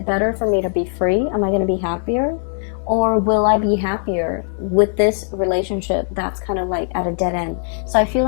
better for me to be free? Am I gonna be happier? Or will I be happier with this relationship that's kind of like at a dead end? So I feel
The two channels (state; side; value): silent; right; digital silence